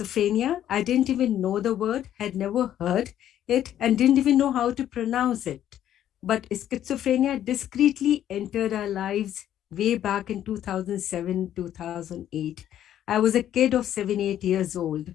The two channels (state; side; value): quieter; right; 11.2 dB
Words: I didn't even know the word, had never heard it, and didn't even know how to pronounce it. But schizophrenia discreetly entered our lives way back in 2007, 2008. I was a kid of 7, 8 years old.